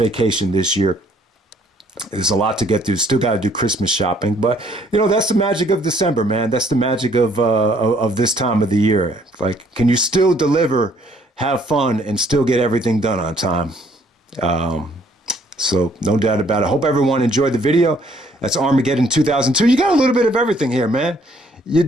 this year. There's a lot to get through. Still got to do Christmas shopping, but you know that's the magic of December, man. That's the magic of this time of the year. Like, can you still deliver, have fun, and still get everything done on time? So no doubt about it. Hope everyone enjoyed the video. That's Armageddon 2002. You got a little bit of everything here, man. You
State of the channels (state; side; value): normal; both; correlation 0.63